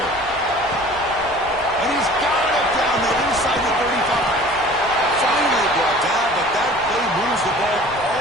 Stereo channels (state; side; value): noise; left; rumble, 21 dB below the sound